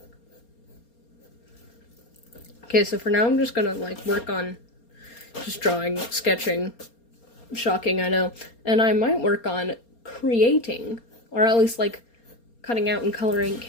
Okay, so for now I'm just gonna, like, work on just drawing, sketching. Shocking, I know. And I might work on creating, or at least, like, cutting out and coloring.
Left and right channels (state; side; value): late; right; 4.3 ms